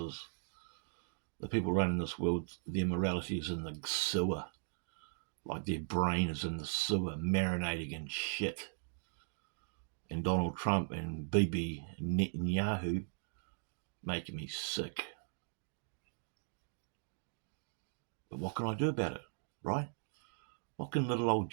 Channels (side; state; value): left; silent; digital silence